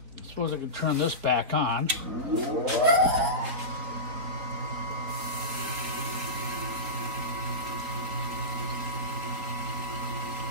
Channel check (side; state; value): left; late; 4.2 ms